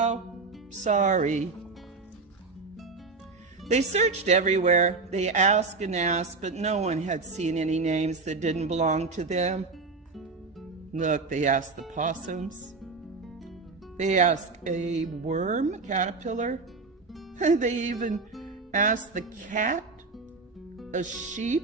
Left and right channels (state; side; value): quieter; left; 4.1 dB